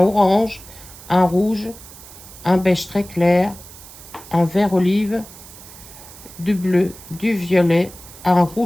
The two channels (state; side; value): noise; right; hiss, 18 dB below the sound